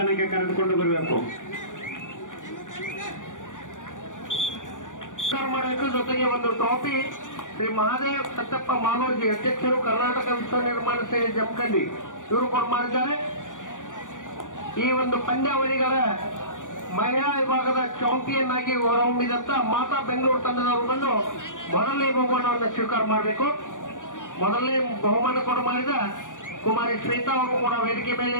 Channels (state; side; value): late; right; 0.87 ms